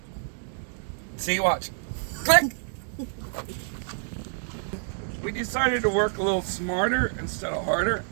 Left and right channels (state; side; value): silent; left; 60 dB below the other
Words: See, watch, click. We decided to work a little smarter instead of harder.